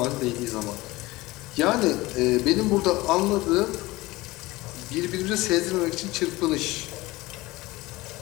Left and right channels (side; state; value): right; quieter; 20.2 dB